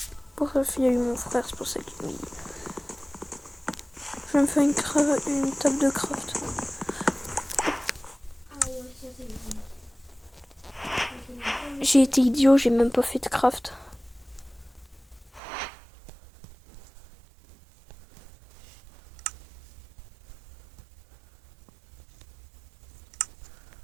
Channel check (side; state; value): left; drops out; at 15.4 s